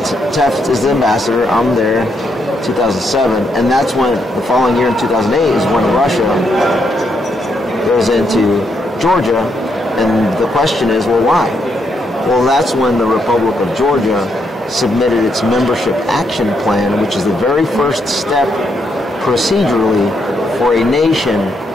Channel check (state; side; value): normal; both; correlation 0.78